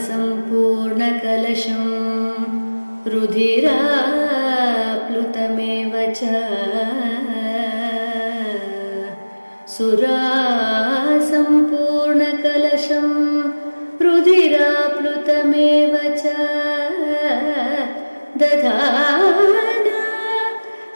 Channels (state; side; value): inverted; both; correlation -1.00